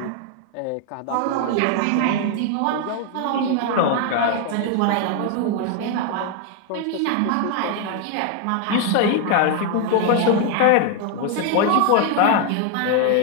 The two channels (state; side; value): different; both; correlation 0.01